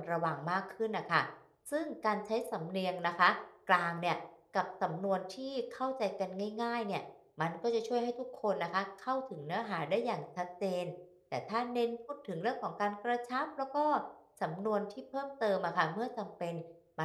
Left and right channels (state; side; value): identical; both; correlation 1.00